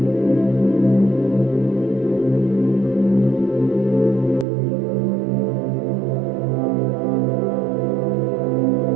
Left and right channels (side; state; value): left; drops out; at 4.5 s